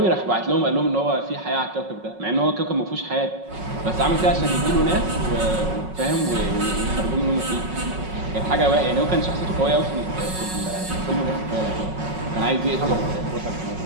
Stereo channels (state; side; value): late; left; 5.4 ms